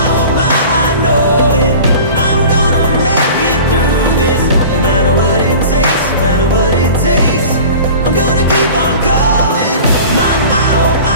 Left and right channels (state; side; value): inverted; both; correlation -0.40